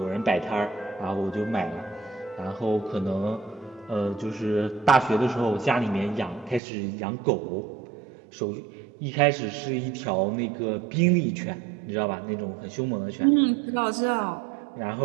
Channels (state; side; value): drops out; left; at 6.6 s